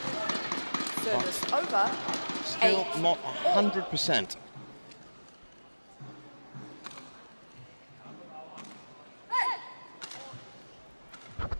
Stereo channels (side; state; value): both; inverted; correlation -1.00